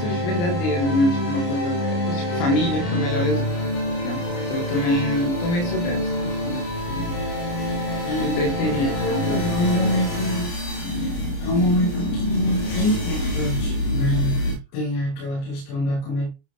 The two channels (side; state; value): right; late; 29 ms